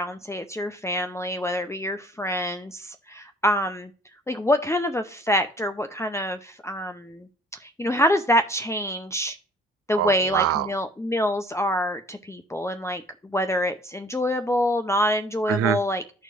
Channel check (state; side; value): normal; both; correlation 0.54